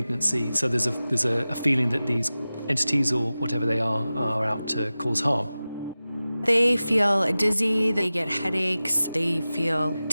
So there's a feeling that these entities or whatever they are out to cause harm. They feel dizzy, they get headaches, they feel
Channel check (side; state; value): both; inverted; correlation -0.96